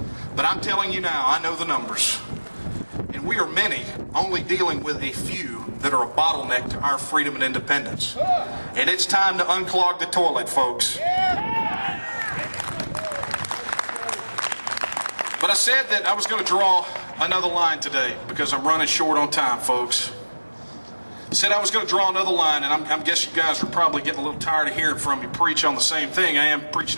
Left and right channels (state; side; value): inverted; both; correlation -1.00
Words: But I'm telling you now, I know the numbers. And we are many only dealing with a few that are a bottleneck to our freedom and independence. And it's time to unclog the toilet, folks. But I said that I was going to draw another line today because I'm running short on time, folks. I said I was going to draw another line, and I guess you guys are probably getting a little tired of hearing from me preach on the same thing. I am preaching